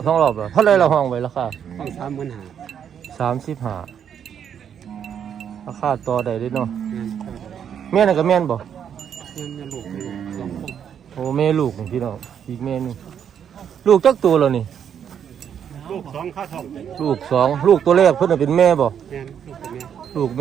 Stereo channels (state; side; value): quieter; left; 8.4 dB